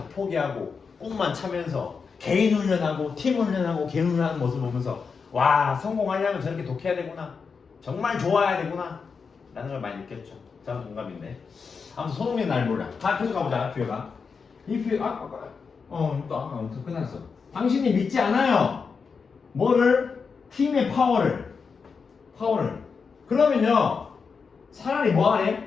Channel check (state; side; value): quieter; right; 5.4 dB